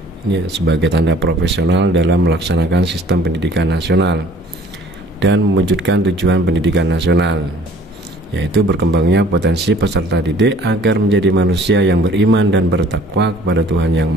Ini sebagai tanda profesional dalam melaksanakan sistem pendidikan nasional dan mewujudkan tujuan pendidikan nasional, yaitu berkembangnya potensi peserta didik agar menjadi manusia yang beriman dan bertakwa kepada Tuhan Yang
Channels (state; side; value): normal; both; correlation 0.54